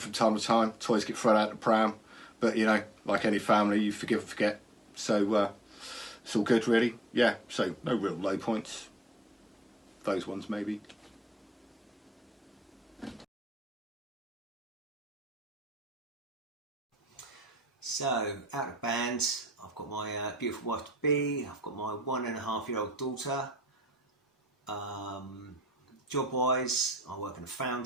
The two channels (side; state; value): both; normal; correlation 0.70